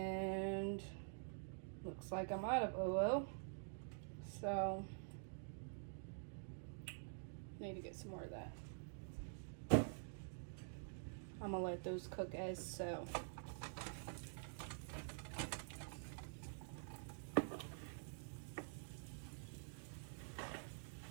looks like I'm out of ooooo. So need to get some more of that. I'm gonna let those cook as so.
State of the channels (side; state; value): left; silent; digital silence